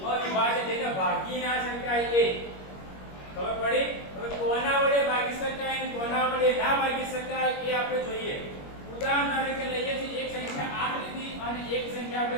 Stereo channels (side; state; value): right; late; 21 ms